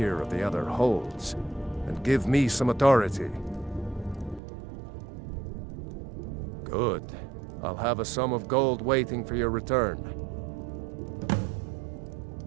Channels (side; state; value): left; drops out; at 4.4 s